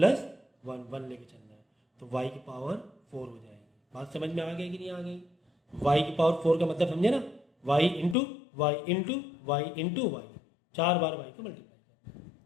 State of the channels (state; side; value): drops out; right; at 8.2 s